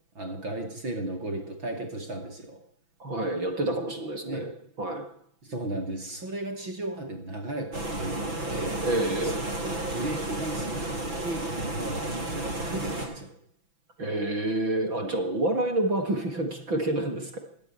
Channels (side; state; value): left; late; 6.0 ms